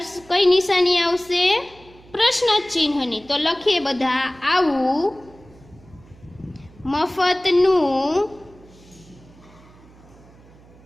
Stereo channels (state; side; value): noise; right; hum, 25 dB below the sound